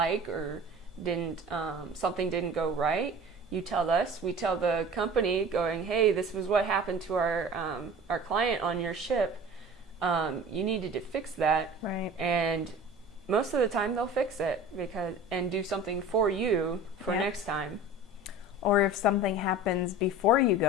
or something didn't go right, you tell us. We tell the company, going, hey, this was what happened to our client on your ship. You needed to fix that. Right. And most of the time they'll fix it and do something for you for next time. Or if something happens before you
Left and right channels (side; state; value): both; normal; correlation 0.39